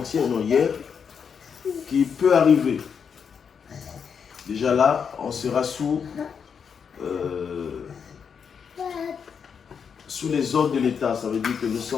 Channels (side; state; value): right; quieter; 6.7 dB